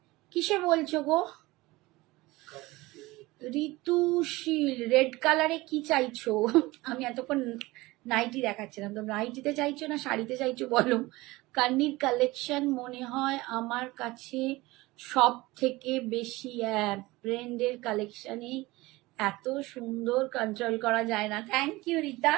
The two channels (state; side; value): quieter; left; 20.6 dB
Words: কিসে বলছো গো ঋতুশীল? রেড কালারে কি চাইছো? আমি এতক্ষণ নাইটি দেখাচ্ছিলাম, তো নাইটিতে চাইছো না শাড়িতে চাইছো বলো। কান্নির কালেকশন মনে হয় আমার কাছে সব থেকে বেশি, ব্র্যান্ডের কালেকশনে এত সুন্দর, কন্ট্রোল করা যায় না। Thank you Rita,